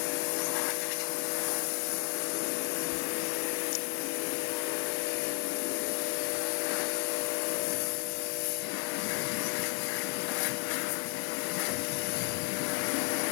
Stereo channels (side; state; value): right; quieter; 39.4 dB